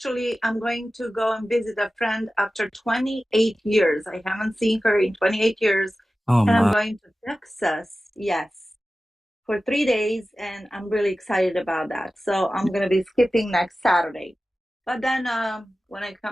I'm going to go and visit a friend after 28 years. I haven't seen her in 28 years. Oh, and I'm my. going to Texas, yes, for 3 days, and I'm really excited about that. So I'm going to be skipping next Saturday. But then when I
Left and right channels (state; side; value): normal; both; correlation 0.95